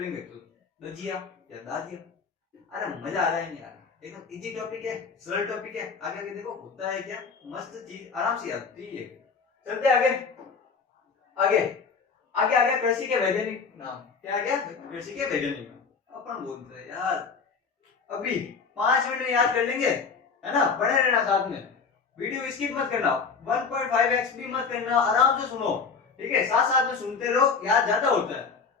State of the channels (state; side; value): quieter; right; 5.3 dB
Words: तो दजिया या दाजिया। अरे मजा आ रहा है नहीं आ रहा? एकदम इजी टॉपिक है, सरल टॉपिक है। आगे आगे देखो होता है क्या, मस्त चीज आराम से आती है। चलते आगे आगे आगे आगे कृषि के वैज्ञानिक नाम। क्या आ गया? कृषि के वैज्ञानिक नाम। अपन बोलते हैं यार अभी 5 मिनट में याद कर लेंगे, है ना? बने रहना साथ में, वीडियो स्किप मत करना, 1.5x भी मत करना, आराम से सुनो, ठीक है। साथ साथ में सुनते रहो, याद ज्यादा होता है।